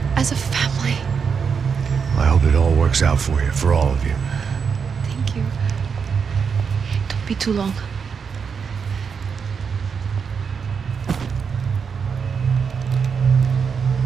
as a family. I hope it all works out for you, for all of you. Thank you. Don't be too long.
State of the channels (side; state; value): left; quieter; 6.2 dB